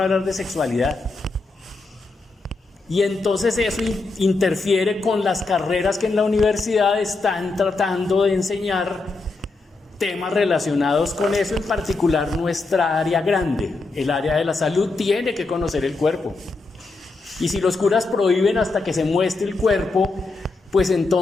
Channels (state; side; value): quieter; right; 3.6 dB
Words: hablar de sexualidad. Y entonces eso interfiere con las carreras que en la universidad están tratando de enseñar temas relacionados con eso, en particular nuestra área grande, el área de la salud, tiene que conocer el cuerpo. Y si los curas prohíben hasta que se muestre el cuerpo, pues